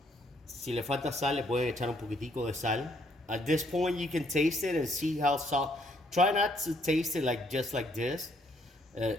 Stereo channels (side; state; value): both; normal; correlation 0.68